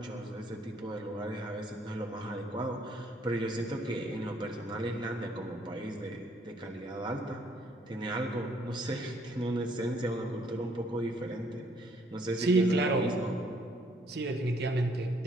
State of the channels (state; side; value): normal; both; correlation 0.65